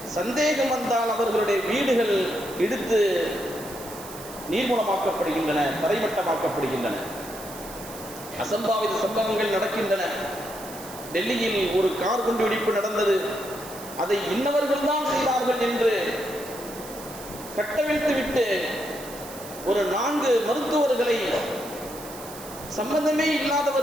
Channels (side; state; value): right; noise; hiss, 15 dB below the sound